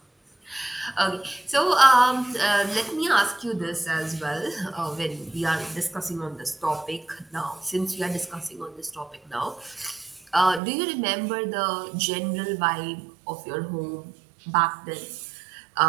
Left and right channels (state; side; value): drops out; left; at 10.6 s